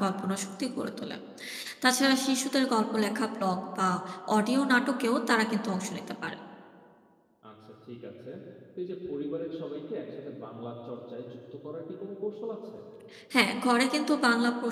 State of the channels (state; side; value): identical; both; correlation 1.00